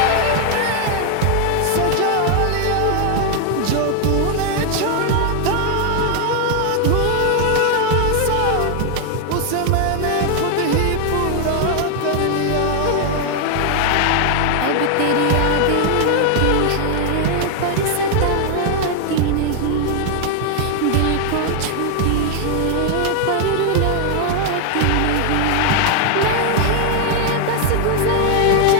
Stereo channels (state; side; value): different; both; correlation 0.00